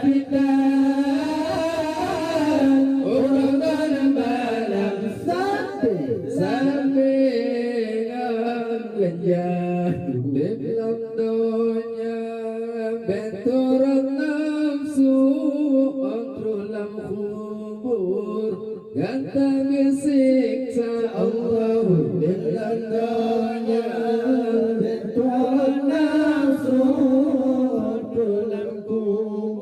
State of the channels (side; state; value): both; identical; correlation 1.00